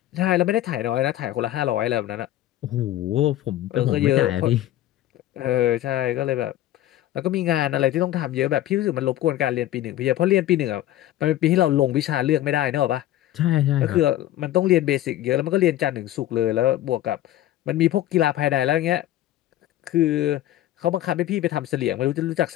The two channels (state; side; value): quieter; right; 13.6 dB